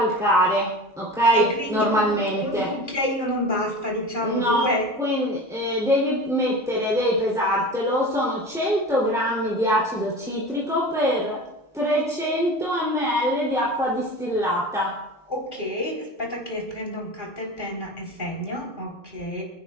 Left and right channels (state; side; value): normal; both; correlation 0.33